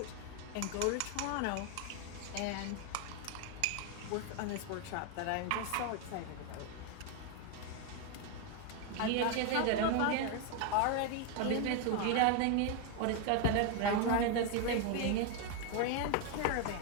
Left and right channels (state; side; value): different; both; correlation 0.01